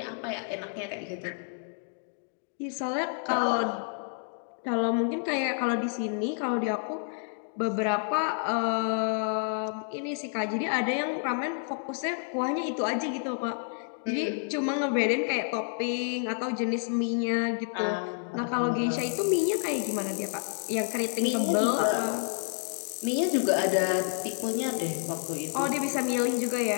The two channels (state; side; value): silent; right; 58 dB below the other